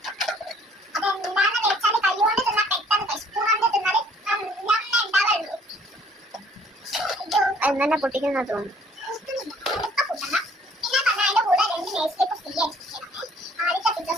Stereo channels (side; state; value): both; normal; correlation 0.59